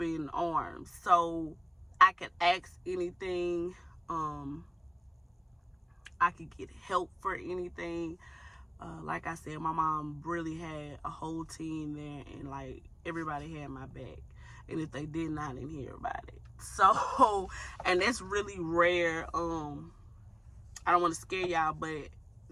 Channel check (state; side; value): identical; both; correlation 1.00